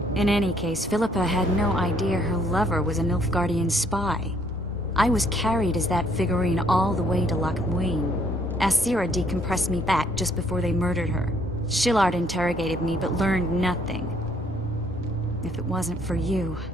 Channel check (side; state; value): both; normal; correlation 0.65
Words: In any case, Philippa had no idea her lover was a Nilfgaardian spy. I was carried as that figurine all the way to Loch Muin. Asira decompressed me back just before they murdered her. Shillard interrogated me but learned nothing. If it wasn't for you,